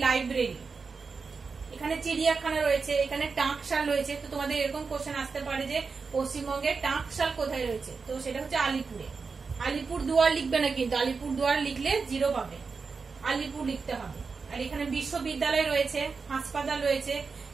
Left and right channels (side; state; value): left; quieter; 4.8 dB